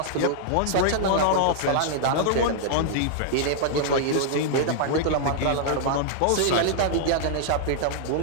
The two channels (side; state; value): both; different; correlation -0.01